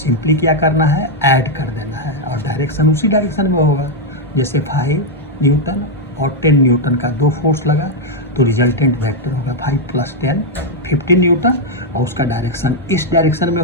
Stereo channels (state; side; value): normal; both; correlation -0.01